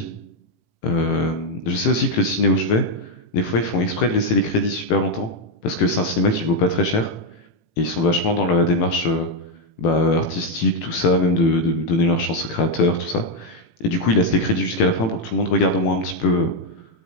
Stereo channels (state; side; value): late; right; 18 ms